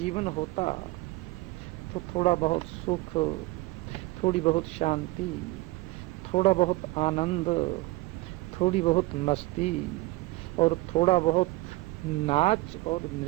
होता तो थोड़ा बहुत सुख, थोड़ी बहुत शांति, थोड़ा बहुत आनंद, थोड़ी बहुत मस्ती और थोड़ा बहुत नाच और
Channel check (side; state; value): left; quieter; 20.9 dB